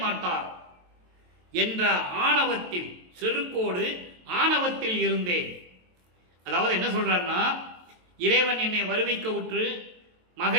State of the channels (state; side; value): late; left; 23 ms